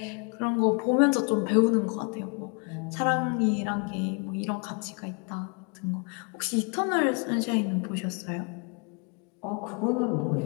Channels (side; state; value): right; quieter; 36.1 dB